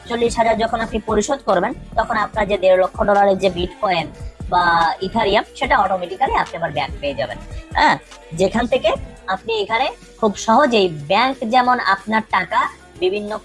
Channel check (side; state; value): both; identical; correlation 1.00